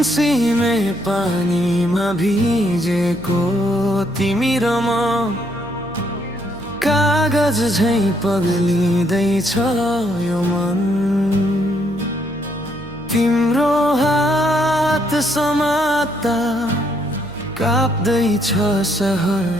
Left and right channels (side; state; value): right; noise; hum, 17 dB below the sound